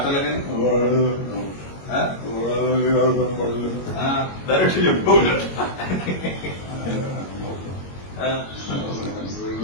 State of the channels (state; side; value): late; right; 22 ms